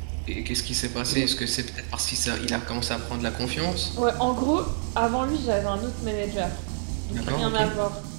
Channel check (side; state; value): left; silent; digital silence